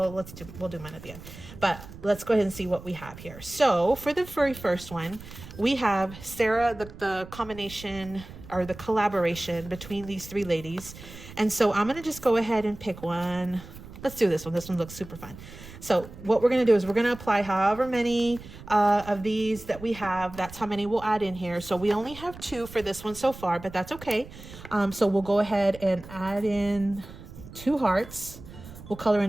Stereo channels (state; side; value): noise; right; rumble, 16 dB below the sound